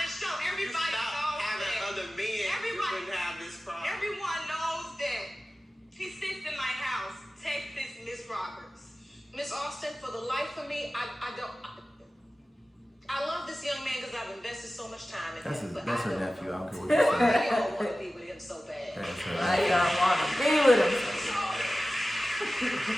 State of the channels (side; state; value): both; normal; correlation 0.96